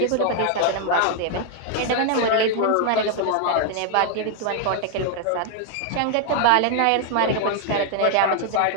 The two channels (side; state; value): both; different; correlation 0.00